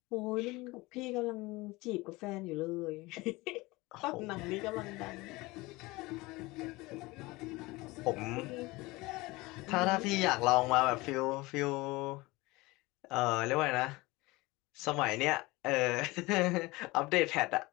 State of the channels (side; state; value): right; quieter; 21.9 dB